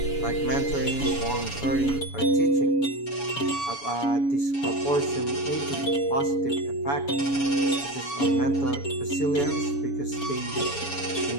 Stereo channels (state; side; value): late; right; 7.1 ms